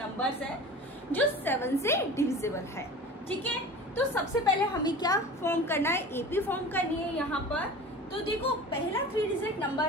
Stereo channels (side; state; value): both; normal; correlation 0.37